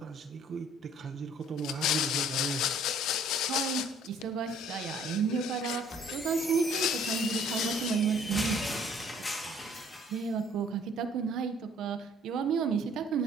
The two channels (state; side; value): normal; both; correlation 0.57